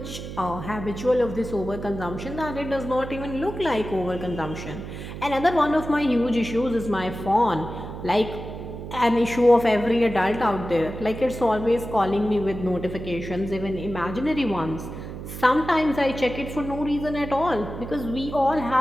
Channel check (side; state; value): right; noise; hum, 9 dB below the sound